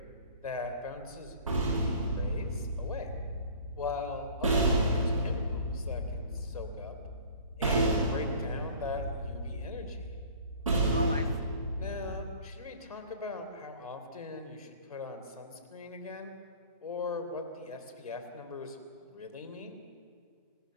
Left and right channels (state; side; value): inverted; both; correlation -0.47